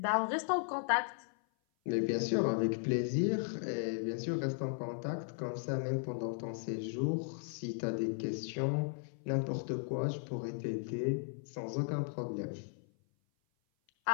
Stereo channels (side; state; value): right; silent; 54 dB below the other